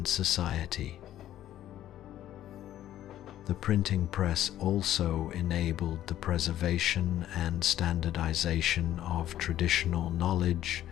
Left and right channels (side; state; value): right; quieter; 12.6 dB